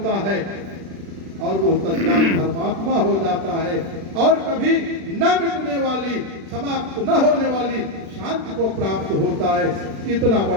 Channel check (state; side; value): late; left; 36 ms